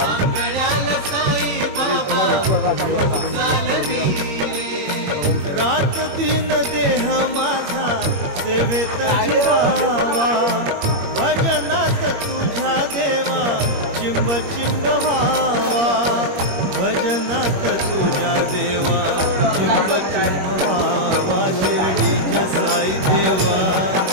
रात दिन देह माझा सेवेत झिरावा भजनात तुझ्या देवा चिंब चिंब व्हावा भजनात तुझ्या देवा चिंब चिंब व्हावा शिर्डीच्या साई देवा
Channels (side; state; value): left; late; 21 ms